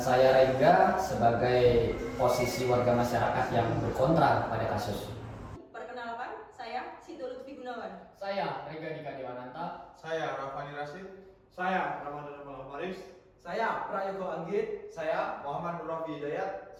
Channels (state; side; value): identical; both; correlation 1.00